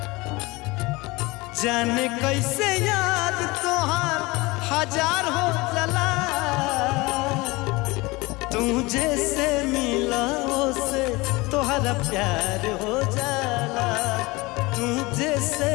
जाने कैसे याद तोहार हजार हो जला तुझे से मिला से तोहरा प्यार हो जाला तुझे से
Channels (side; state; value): right; quieter; 23.0 dB